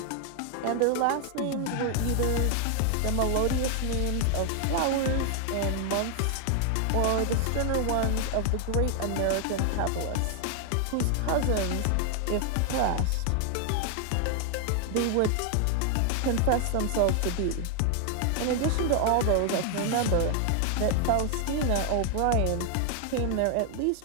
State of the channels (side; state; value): both; different; correlation 0.00